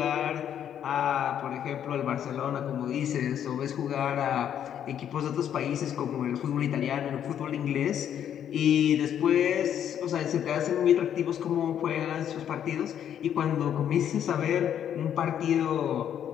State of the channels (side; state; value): right; quieter; 9.6 dB